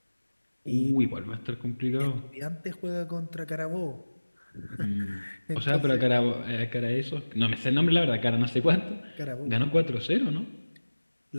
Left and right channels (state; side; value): inverted; both; correlation -1.00